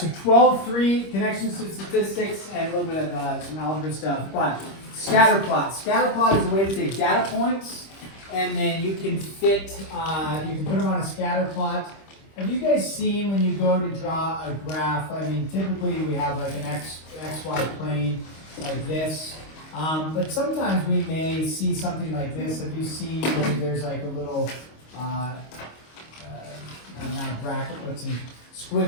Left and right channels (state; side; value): late; right; 25 ms